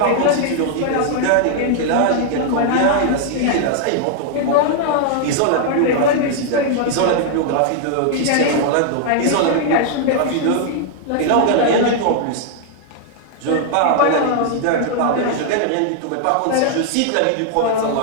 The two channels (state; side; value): different; both; correlation 0.00